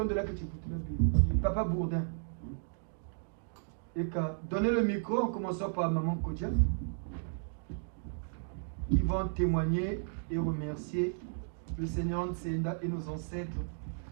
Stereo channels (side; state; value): left; silent; digital silence